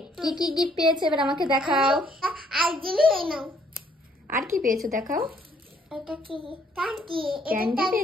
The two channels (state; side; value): normal; both; correlation 0.66